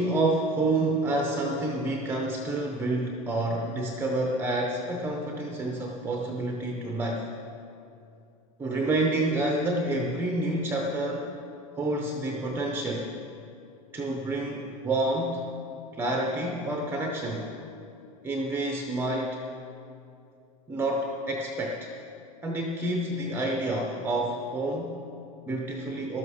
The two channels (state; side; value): normal; both; correlation 0.44